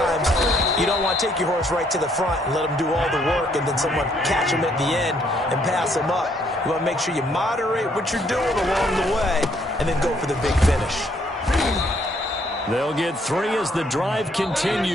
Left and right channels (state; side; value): normal; both; correlation 0.68